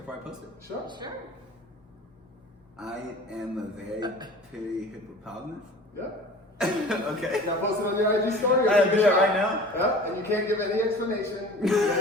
I post it? Sure. Sure. I am a very pretty hippopotamus. Yeah. Okay. Now post it on your IG story. I do it right now. Yeah, and you can't give any explanation. You just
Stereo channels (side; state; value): both; normal; correlation 0.42